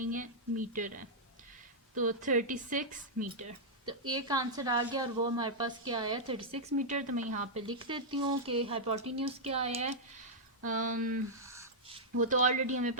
है, मीटर है। तो 36 मीटर, तो एक आंसर आ गया और वो हमारे पास क्या आया, 36 मीटर। तो मैं यहाँ पे लिख देती हूँ कि हाइपोटेन्यूज क्या आया है। वो तो ऑलरेडी हमें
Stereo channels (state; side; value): normal; both; correlation -0.07